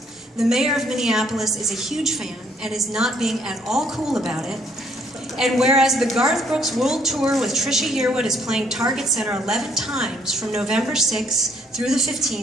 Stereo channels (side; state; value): both; normal; correlation 0.67